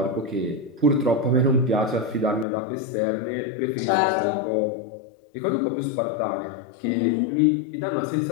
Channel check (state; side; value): drops out; right; at 2.5 s